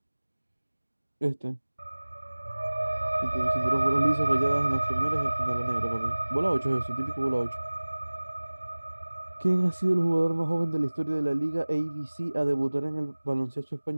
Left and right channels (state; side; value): inverted; both; correlation -1.00